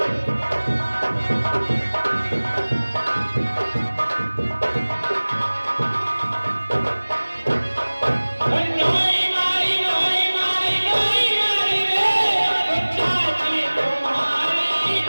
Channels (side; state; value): both; inverted; correlation -1.00